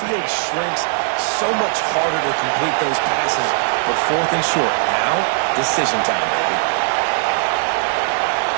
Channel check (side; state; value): left; silent; digital silence